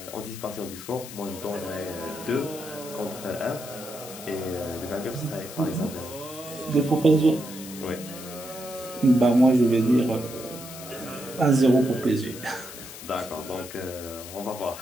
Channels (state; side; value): noise; left; hiss, 13 dB below the sound